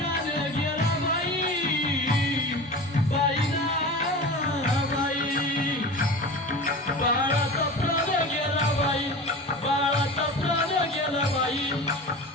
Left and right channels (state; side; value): normal; both; correlation 0.33